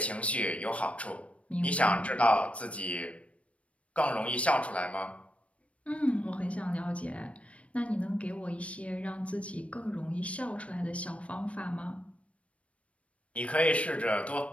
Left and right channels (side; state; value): right; late; 0.063 ms